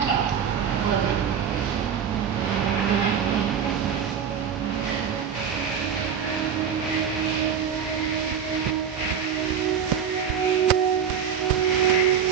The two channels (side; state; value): left; quieter; 7.5 dB